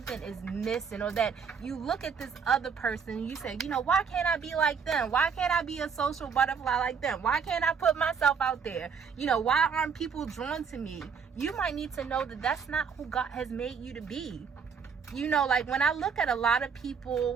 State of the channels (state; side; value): quieter; left; 6.2 dB